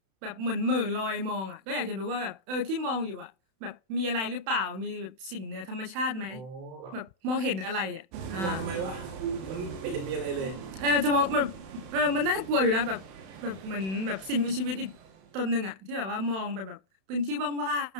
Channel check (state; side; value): late; left; 31 ms